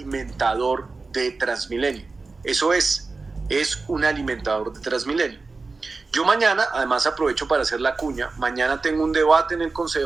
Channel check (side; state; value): left; quieter; 3.9 dB